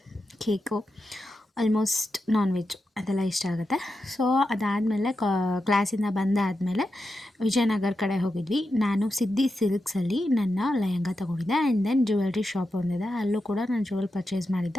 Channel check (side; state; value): both; normal; correlation 0.89